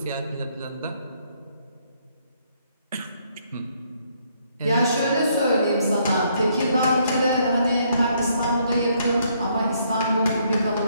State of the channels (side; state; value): both; inverted; correlation -0.70